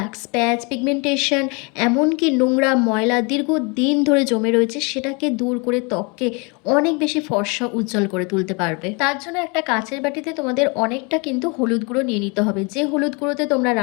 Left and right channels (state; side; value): quieter; right; 30.9 dB